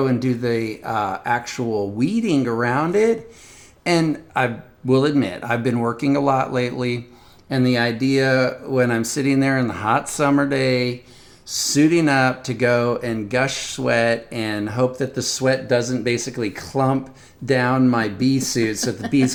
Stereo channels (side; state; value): both; identical; correlation 1.00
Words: and do the actual weeding around it. And I will admit, I've been working a lot lately. And the idea when I'm sitting there in the hot summer day, suiting up to go and gush sweat and hope that the sweat doesn't basically clump down my bee suit so that the bees